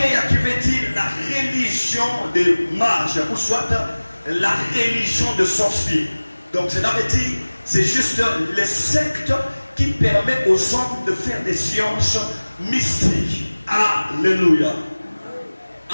qui veut dire la religion des mages, ou soit la religion de sorciers. Donc cela veut dire, c'est juste les sectes qui permettent aux hommes de faire des sciences mystiques. Alléluia.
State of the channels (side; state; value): both; inverted; correlation -1.00